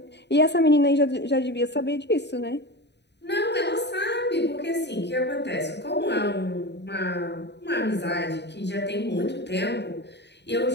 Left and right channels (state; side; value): late; right; 0.50 ms